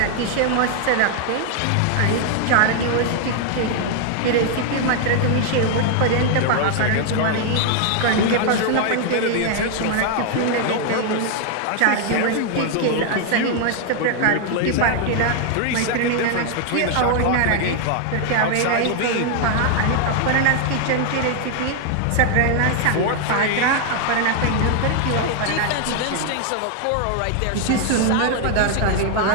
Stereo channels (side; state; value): both; different; correlation 0.00